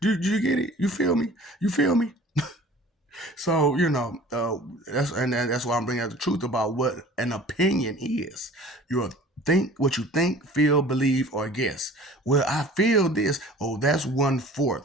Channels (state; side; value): normal; both; correlation 0.46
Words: you get it? You feel me? You feel me? So that's why I'm bringing out the truth about what an opinion is. You think what you think, feel, believe, or guess. Well, I feel this. Oh, that's